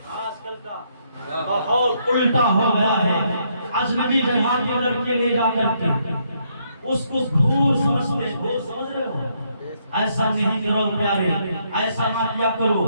آج کل کا ماحول الٹا ہو گیا ہے، اجنبی جگہ کی لڑکی لے جا کر کے اس کو دور سمجھتے ہیں، دور سمجھ رہے ہو؟ ایسا نہیں کرو پیارے، ایسا نہ کیا کرو،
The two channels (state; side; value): inverted; both; correlation -0.74